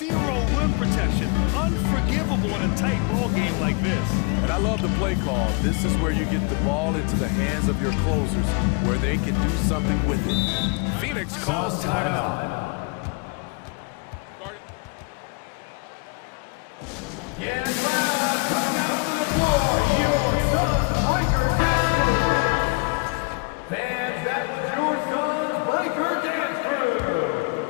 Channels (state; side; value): quieter; right; 30.9 dB